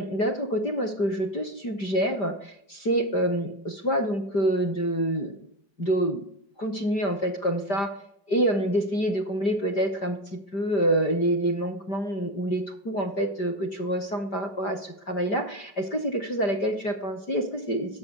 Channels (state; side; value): late; right; 5.0 ms